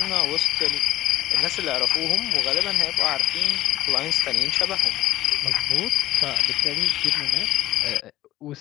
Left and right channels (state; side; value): quieter; right; 14.9 dB